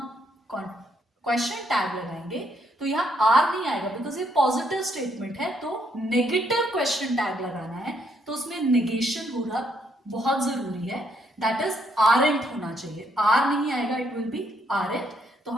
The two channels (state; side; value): normal; both; correlation 0.73